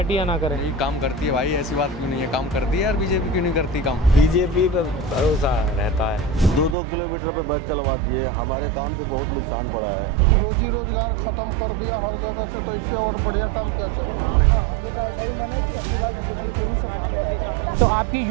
या ना करे। यही काम करती है भाई, ऐसी बात क्यों नहीं है, काम करती है यार। बीजेपी क्यों नहीं करती काम? बीजेपी पे भरोसा रहता है। 2-2 किलोमीटर पे बस चलवा दिए, हमारे काम पे बहुत नुकसान पड़ा है। रोजी रोजगार खत्म कर दिया हर जगह से, तो इससे और बढ़िया काम क्या चाहिए? हाँ, हम लोग का ऐसा ही मन है कि अगली बार बीजेपी को ही सपोर्ट करेंगे। तो आपकी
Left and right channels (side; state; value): left; drops out; at 6.8 s